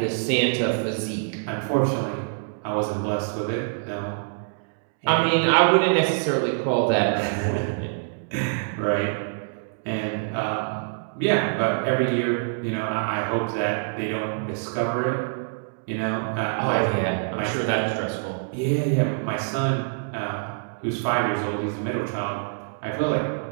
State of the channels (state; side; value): silent; left; digital silence